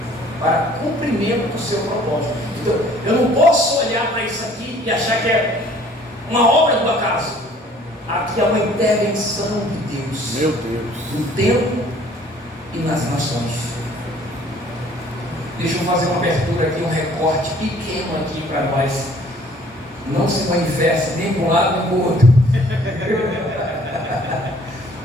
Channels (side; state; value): both; normal; correlation 0.56